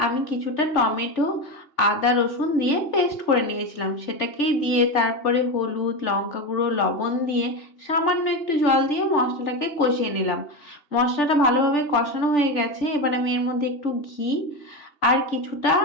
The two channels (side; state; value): right; late; 3.4 ms